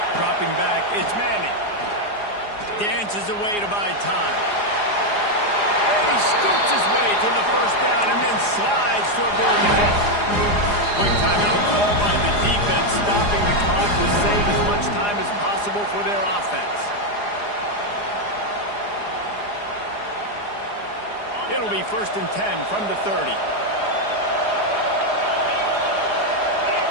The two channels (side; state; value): right; late; 4.9 ms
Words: Dropping back, it's Manning. Dances away to buy time. And he scoops his way to the 1st down and then slides to avoid the hit. Quick timeout call by the defense, stopping the clock to save as much time as possible for their offense. It'll be 1st and 10 from the 30.